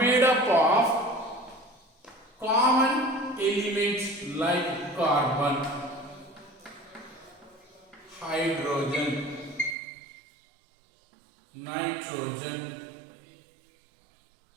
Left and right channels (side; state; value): left; drops out; at 9.8 s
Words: up of common elements like carbon, hydrogen, nitrogen,